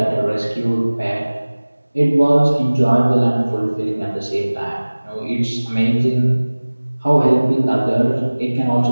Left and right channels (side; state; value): both; inverted; correlation -1.00